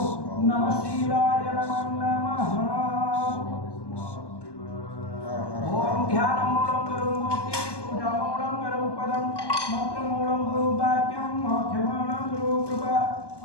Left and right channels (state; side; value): late; right; 1.2 ms